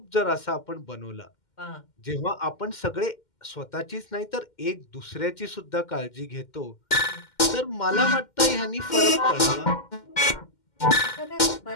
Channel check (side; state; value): right; late; 2.1 ms